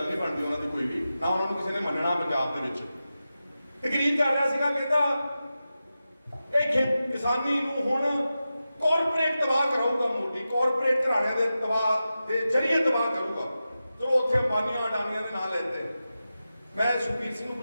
ਨਹੀਂ ਬਣਦੀ ਉਹਨਾਂ ਦੀ ਕੋਈ ਵੀ, ਨਾ ਉਹਨਾਂ ਨੂੰ ਕਿਸੇ ਨੇ ਮੰਨਣਾ। ਪੰਜਾਬ ਦੇ ਵਿੱਚ ਤਕਰੀਰ ਕਰ ਰਿਹਾ ਸੀਗਾ, ਕਹਿੰਦਾ ਇਹ ਕਿਸਾਨੀ ਨੂੰ ਹੁਣ ਕਾਰਪੋਰੇਟ ਤਬਾਹ ਕਰਾਊਗਾ ਮੋਦੀ, ਕਾਰਪੋਰੇਟ ਘਰਾਣਿਆਂ ਦੇ ਤਬਾਹ ਦੇ ਜ਼ਰੀਏ ਤਬਾਹ ਕਰੂਗਾ। ਚਲੋ ਉੱਥੇ ਅੰਬਾਨੀਆਂ ਅਡਾਨੀਆਂ ਦੇ ਨਾਂ ਲੈਂਦੇ। ਮੈਂ ਸੁਖਬੀਰ ਸਿੰਘ ਨੂੰ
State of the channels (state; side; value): inverted; both; correlation -0.92